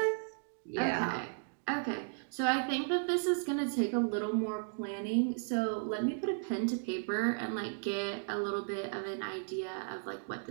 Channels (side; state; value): left; silent; digital silence